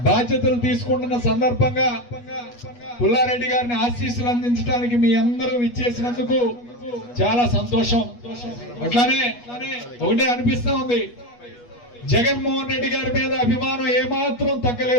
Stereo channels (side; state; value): right; late; 8.3 ms